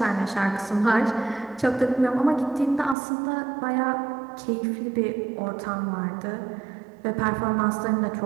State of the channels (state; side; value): drops out; left; at 3.0 s